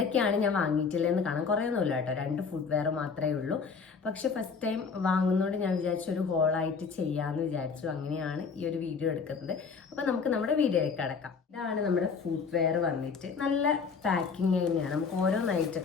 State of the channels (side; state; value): right; quieter; 5.5 dB